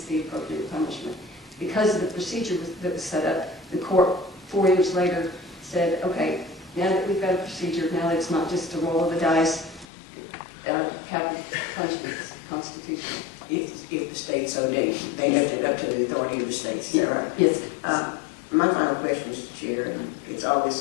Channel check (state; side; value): drops out; right; at 9.9 s